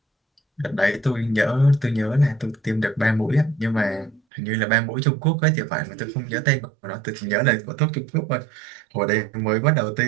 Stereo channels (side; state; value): left; drops out; at 4.2 s